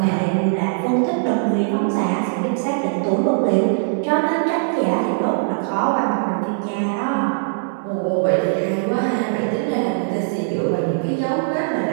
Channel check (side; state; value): left; silent; digital silence